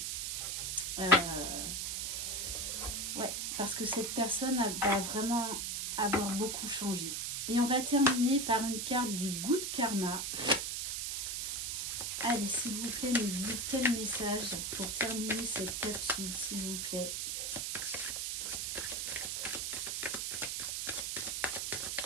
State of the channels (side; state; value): right; noise; hiss, 2 dB below the sound